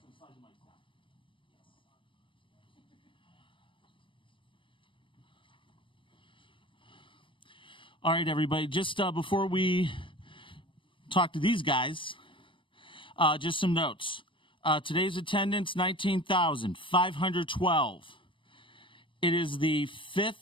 slide the mics down. All right, everybody. Just before we talk to these guys, just some notes. Today's attendance, 19,512. It is the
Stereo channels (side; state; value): right; late; 0.25 ms